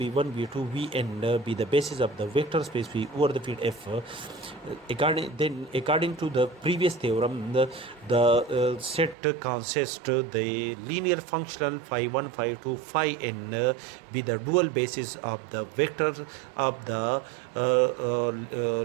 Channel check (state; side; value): drops out; left; at 9.2 s